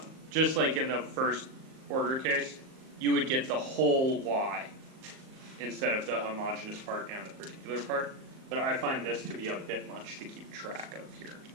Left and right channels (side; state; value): left; late; 38 ms